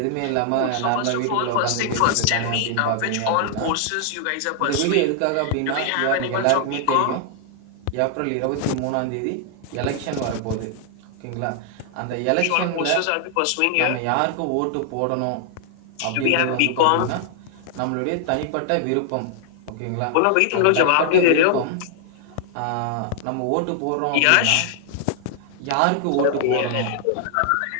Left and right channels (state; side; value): different; both; correlation -0.01